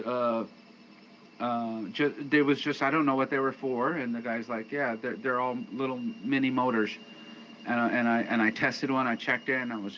was just, I don't know what they were for, and the guy's like, yeah, they're all little mini motors, and I tested one, I checked it, and I was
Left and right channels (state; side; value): identical; both; correlation 1.00